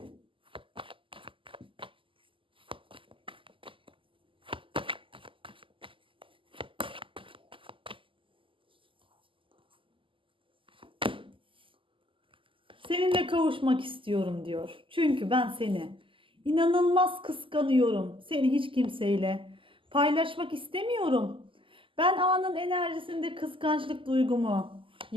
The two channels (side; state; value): left; late; 0.25 ms